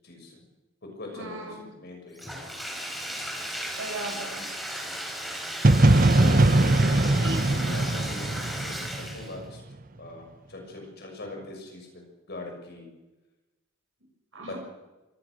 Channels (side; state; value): both; normal; correlation 0.82